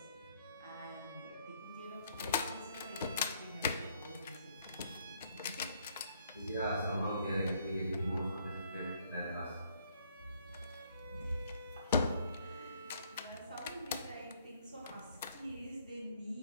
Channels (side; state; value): both; inverted; correlation -0.67